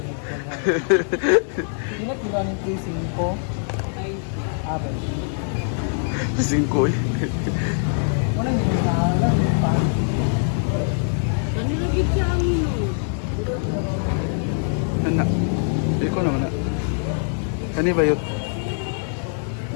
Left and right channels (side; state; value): right; silent; 63 dB below the other